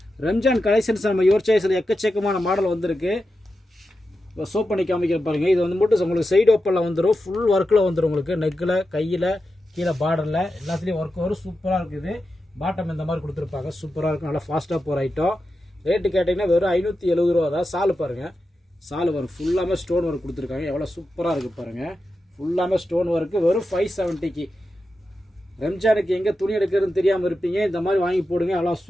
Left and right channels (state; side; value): normal; both; correlation 0.90